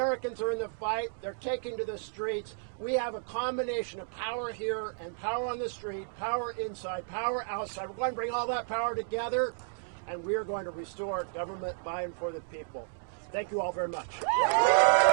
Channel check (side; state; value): left; silent; digital silence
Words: are in the fight. They're taking to the streets. We have a combination of power here and power on the street, power inside, power outside. We're going to bring all that power together, and we are going to restore government by and for the people. Thank you all very much.